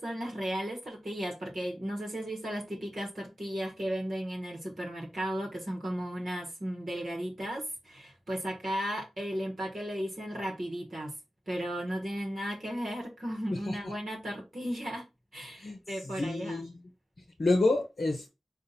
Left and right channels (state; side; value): normal; both; correlation 0.92